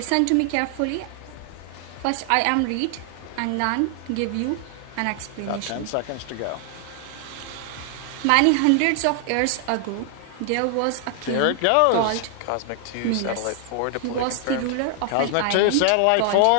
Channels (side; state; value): both; different; correlation 0.00